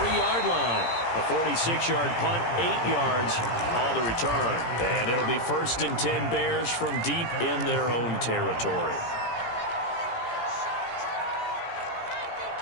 line. A 46-yard punt, 8 yards on the return. And it'll be 1st and 10 Bears from deep in their own territory.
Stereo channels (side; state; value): right; late; 17 ms